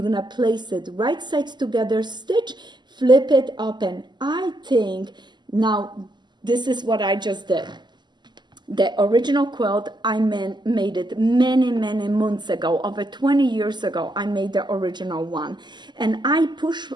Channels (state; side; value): late; left; 0.21 ms